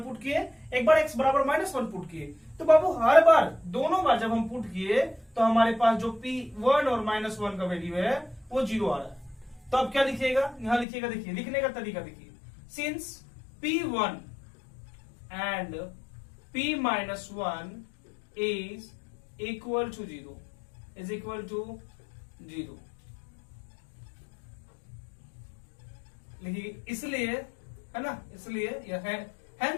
पुट किए, एक बार x बराबर -1 पुट किए। तो बाबू हर बार दोनों बार जब हम पुट किए तो हमारे पास जो p1 और -1 का वैल्यू है वो 0 आ रहा है। तो अब क्या लिखिएगा, यहां लिखिएगा, देखिए लिखने का तरीका देखिए, since p1 and p-1 is equal to 0, is equal to 0 लिखिए, इसलिए है ना, इसलिए यह है,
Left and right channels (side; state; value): right; drops out; at 10.9 s